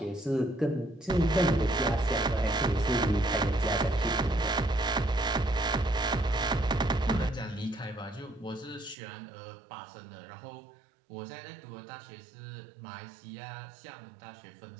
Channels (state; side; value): drops out; left; at 9.0 s